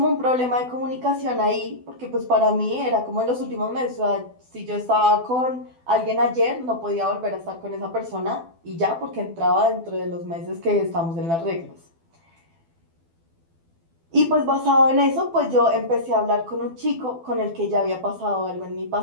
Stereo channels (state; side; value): late; left; 12 ms